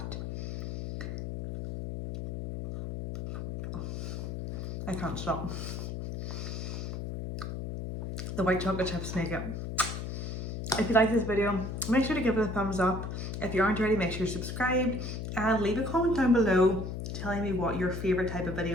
I can't stop. The white chocolate chips make it. If you like this video, make sure to give it a thumbs up. If you aren't already, make sure to subscribe and leave a comment down below telling me what your favorite type of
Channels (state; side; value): noise; left; hum, 5 dB below the sound